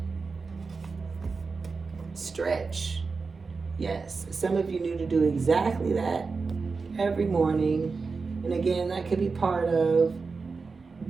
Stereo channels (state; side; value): quieter; left; 4.5 dB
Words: Stretch. Yes. Some of you need to do exactly that every morning. And again, that could be part of